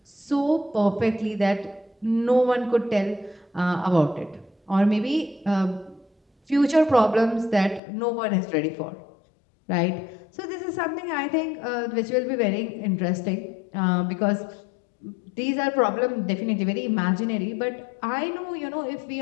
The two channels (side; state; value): right; drops out; at 7.8 s